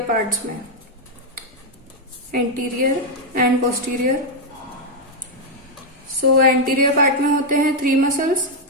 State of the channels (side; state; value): both; normal; correlation 0.00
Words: पार्ट्स में, anterior and posterior. So anterior part में होते हैं 3 मसल्स